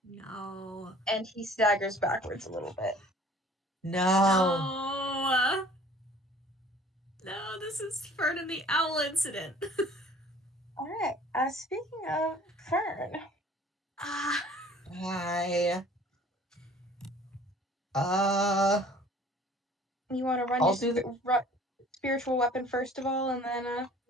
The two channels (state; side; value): normal; both; correlation 0.50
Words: No. And he staggers backwards a little bit. No. No, this is Fern and the Owl incident. Alright, speaking of Fern. Hi. You want to run I'll your do the spiritual weapon first of all, and then